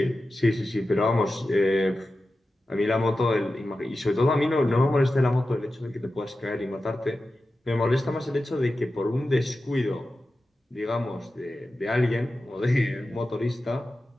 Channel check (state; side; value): normal; both; correlation 0.93